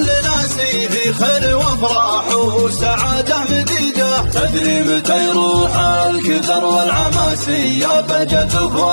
ناسي في خير وافراح وسعادة مديدة. تدري متى يروح الكدر والعماسي، يا بهجة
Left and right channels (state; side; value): inverted; both; correlation -1.00